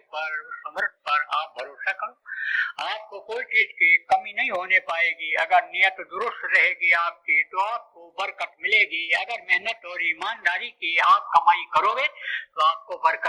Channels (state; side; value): identical; both; correlation 1.00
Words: पर, उस समर्थ पर आप भरोसा करो। आपको कोई चीज की कमी नहीं होने पाएगी। अगर नियत दुरुस्त रहेगी आपकी तो आपको बरकत मिलेगी। अगर मेहनत और ईमानदारी की आप कमाई करोगे तो आपको